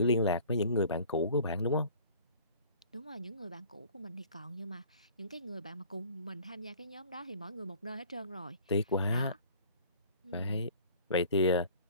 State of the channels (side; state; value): both; inverted; correlation -0.48